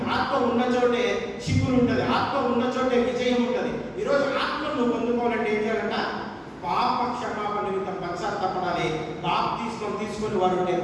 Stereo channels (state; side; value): identical; both; correlation 1.00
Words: ఆత్మ ఉన్న చోటే చిగురు ఉంటుంది, ఆత్మ ఉన్న చోటే విజయం ఉంటుంది. ఈరోజు ఆత్మ నువ్వు పొందుకోవాలంటే ఏం చేయాలంట? పాప క్షమాపణ నిమిత్తం పశ్చాత్తాపడాలి. బాప్తిస్మం తీసుకొని వారు ఉంటే